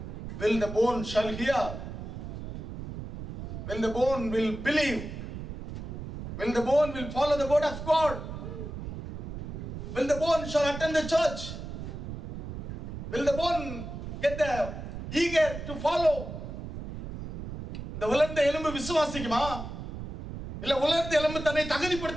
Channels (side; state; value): right; noise; rumble, 8 dB below the sound